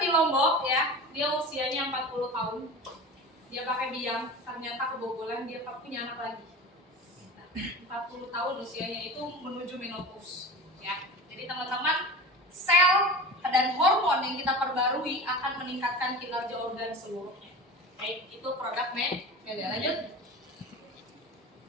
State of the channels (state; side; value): normal; both; correlation 0.32